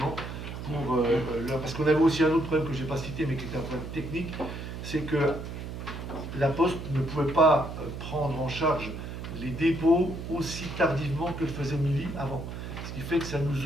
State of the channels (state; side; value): noise; right; hum, 8 dB below the sound